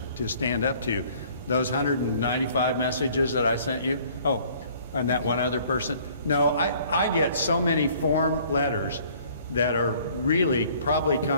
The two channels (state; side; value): inverted; both; correlation -0.56